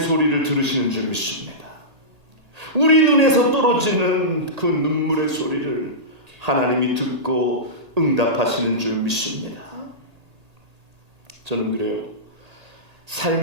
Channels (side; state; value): left; late; 1.8 ms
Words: 들으시는 줄 믿습니다. 우리 눈에서 떨어지는 그 눈물의 소리를 하나님이 듣고 응답하시는 줄 믿습니다. 저는 그래요.